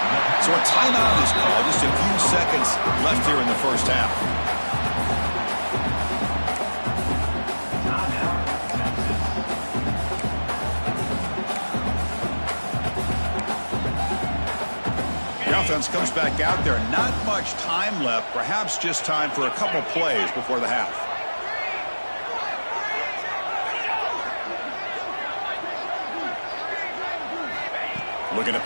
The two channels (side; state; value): both; inverted; correlation -1.00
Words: So a timeout is called. Just a few seconds left here in the first half. The offense comes back out there. Not much time left. Perhaps just time for a couple plays before the half. Looking to